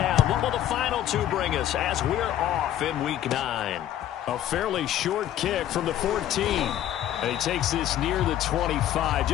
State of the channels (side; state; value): right; quieter; 11.9 dB